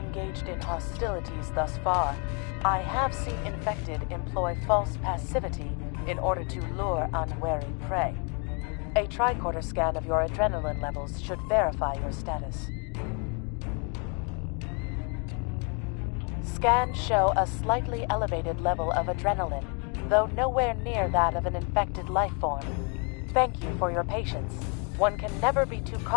in hostilities thus far, I have seen infected employ false passivity in order to lure unwary prey. A tricorder scan of your adrenaline levels should verify your status. Scans show a slightly elevated level of adrenaline, though nowhere near that of an infected life form. Thank you for your patience. One can never be too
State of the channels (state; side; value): quieter; right; 36.5 dB